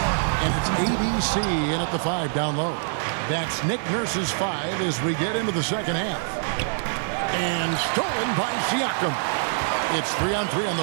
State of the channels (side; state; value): left; silent; 62 dB below the other